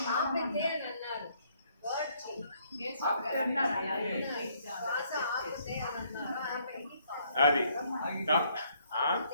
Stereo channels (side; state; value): both; inverted; correlation -0.67